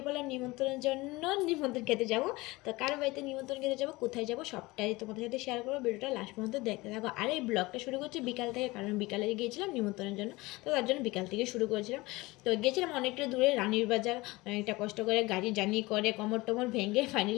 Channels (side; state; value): right; quieter; 21.5 dB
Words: পড়লাম নিমন্ত্রণের জন্য। নিমন্ত্রণ খেতে যাব। তো কারো বাড়িতে নিমন্ত্রণ খেতে যাব, কোথায় যাব সবটাই তোমাদের সাথে শেয়ার করবো। ভিডিওটা লাস্ট পর্যন্ত দেখতে থাকো। আর এই ব্লগটা শুরু করছি বিকাল থেকে, কারণ বিকালে গিয়েছিলাম নিমন্ত্রণের জন্য। তো তার জন্য বিকাল থেকে শুরু করেছিলাম। তো গিয়েছিলাম অনেকটা দূরে, রানীর বাজার। অনেকটা কষ্ট করে গাড়ি জার্নি করে কোমর টোমর ভেঙে